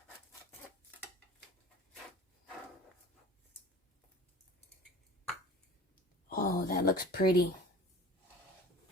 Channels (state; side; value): normal; both; correlation 0.42